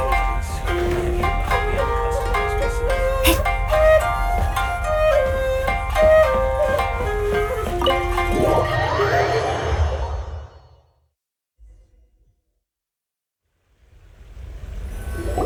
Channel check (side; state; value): both; identical; correlation 1.00